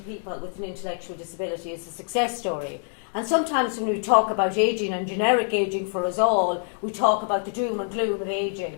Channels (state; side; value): silent; right; 60 dB below the other